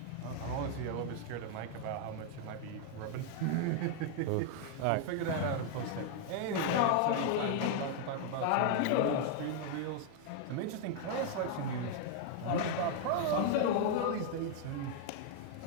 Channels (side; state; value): both; different; correlation 0.00